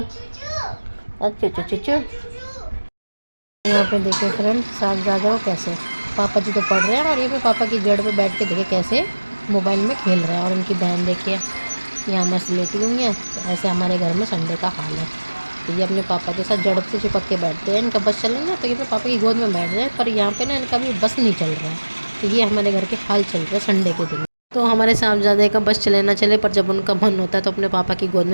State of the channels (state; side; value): inverted; both; correlation -1.00